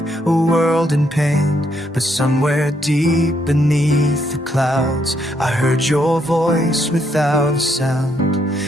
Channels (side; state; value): both; normal; correlation 0.75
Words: a world in pain. But somewhere deep beneath the clouds, I heard your voice without a sound.